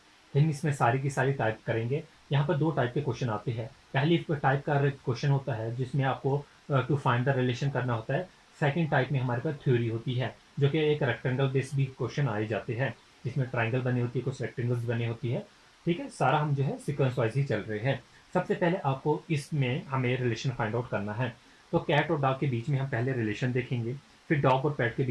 हम इसमें सारी की सारी टाइप करेंगे। यहाँ पर 2 टाइप के क्वेश्चन आते हैं। पहली टाइप का क्वेश्चन होता है जिसमें आपको टू फाइंड द रिलेशन करना होता है। सेकंड टाइप में हमारे पास थ्योरी होती है, जो कि एक रेक्टेंगल बेस्ड भी क्वेश्चन आए जाते हैं, जिसमें ट्राइंगल बनी होती है, कुछ रेक्टेंगल्स बनी होती है। ठीक है, सारा हम जो है सिक्वेंस वाइज ही चल रहे हैं। सबसे पहले आपको इसमें हमें रिलेशन फाइंड आउट करना है। तो कैट और डॉग के बीच में हम पहले रिलेशन देखेंगे, फिर डॉग और पैट के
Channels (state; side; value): identical; both; correlation 1.00